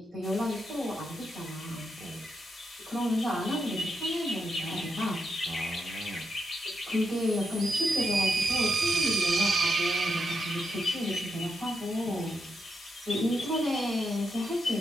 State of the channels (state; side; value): normal; both; correlation 0.83